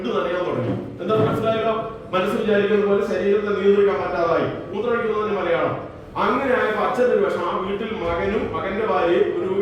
നനയാൻ തുടങ്ങി. എന്താ മനസ്സിലായല്ലോ? മനസ്സ് വിചാരിക്കുന്ന പോലെ ശരീരത്തെ നിയന്ത്രിക്കാൻ പറ്റാതായി. മൂത്രമൊഴിക്കുന്നതിന് മലയാളം. അങ്ങനെ ആയപ്പോ അച്ഛൻ്റെ ഒരു വിഷമം. ആ വീട്ടിൽ മകനും മകന്റെ ഭാര്യയും ഒരു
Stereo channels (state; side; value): identical; both; correlation 1.00